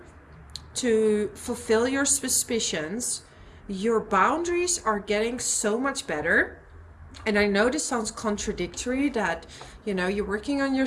to fulfill your suspicions. Your boundaries are getting so much better. And I know this sounds contradictory that, you know, you're working on your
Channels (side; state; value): both; identical; correlation 1.00